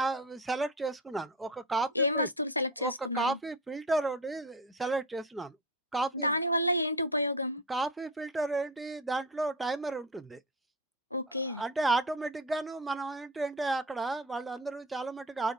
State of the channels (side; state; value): both; normal; correlation 0.23